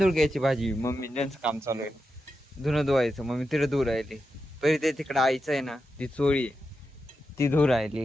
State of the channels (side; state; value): both; normal; correlation 0.88